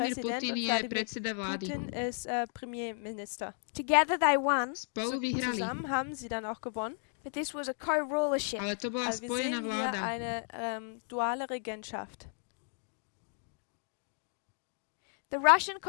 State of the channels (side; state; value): right; silent; 55 dB below the other